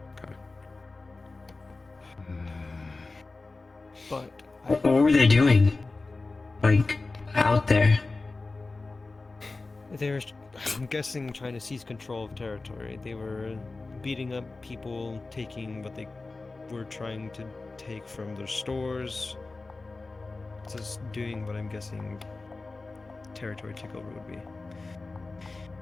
But what were they doing? Like, out there? They were, I'm guessing, trying to seize control of territory. They were beating up people, taking what they were trying to take from their stores. Just doing what I'm guessing territory takeover would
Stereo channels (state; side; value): quieter; right; 3.5 dB